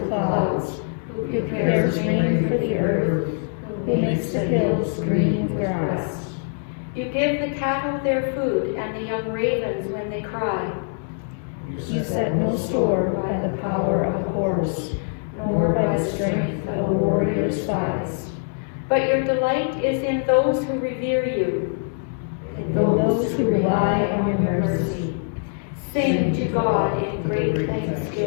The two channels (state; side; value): silent; right; 63 dB below the other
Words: clouds, who prepares rain for the earth, who makes the hills green with grass. You give the cattle their food and the young ravens when they cry. You set no store by the power of a horse, nor by the strength of a warrior's thighs. But your delight is in those who revere you, in those who rely on your mercy. Sing to God in great